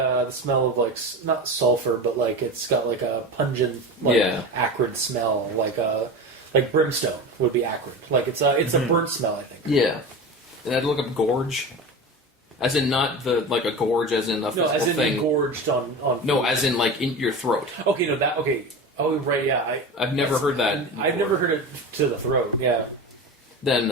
smell of like not sulfur, but like it's got like a pungent, like Yeah. acrid smell, like brimstone would be acrid. Like it's a burnt smell, I think. Yeah. And I had to look up gorge. As in not like a gorge as in a No, physical as in thing. gorged on. No, food. as in like in your throat. Okay, no, that okay. Oh, right, yeah. I've never heard that. I've before. never heard it to the throat. Yeah.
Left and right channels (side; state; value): both; normal; correlation 0.27